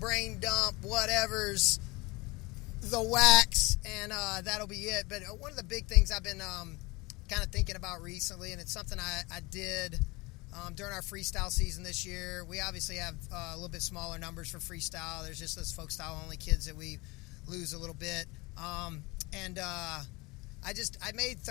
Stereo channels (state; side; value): quieter; right; 24.1 dB